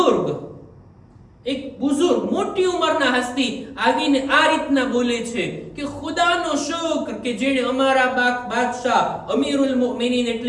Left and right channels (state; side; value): identical; both; correlation 1.00